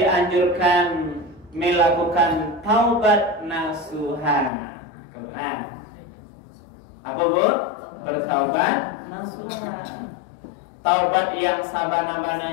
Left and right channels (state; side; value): drops out; right; at 4.5 s